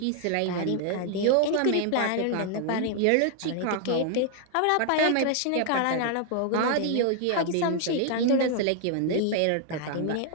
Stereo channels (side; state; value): both; different; correlation 0.00